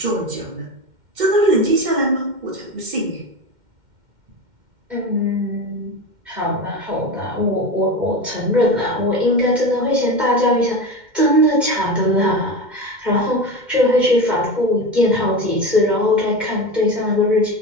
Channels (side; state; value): left; late; 2.1 ms